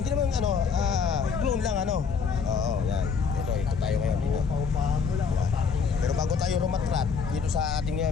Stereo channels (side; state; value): right; quieter; 5.8 dB